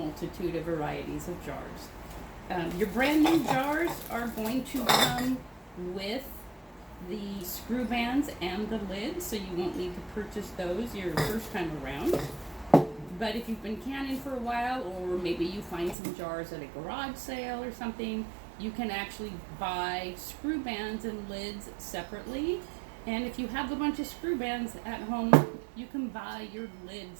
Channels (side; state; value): left; drops out; at 16.0 s